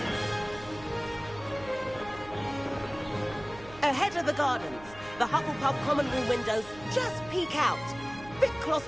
Ahead of the gardens, the Hufflepuff common room windows just peek out. Bit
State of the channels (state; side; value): noise; right; hum, 19 dB below the sound